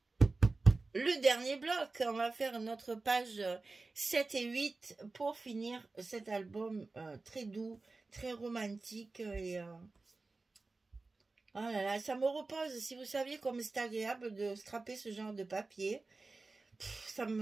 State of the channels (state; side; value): quieter; left; 3.6 dB